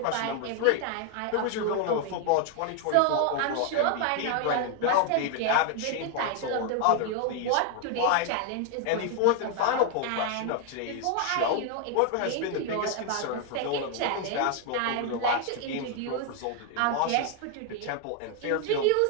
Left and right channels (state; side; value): different; both; correlation 0.00